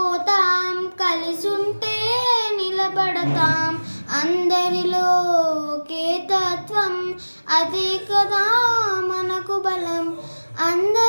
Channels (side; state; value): both; inverted; correlation -1.00